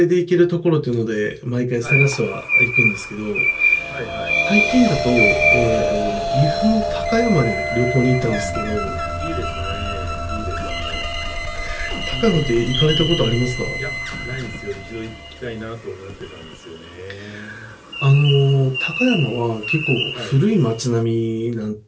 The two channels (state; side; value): identical; both; correlation 1.00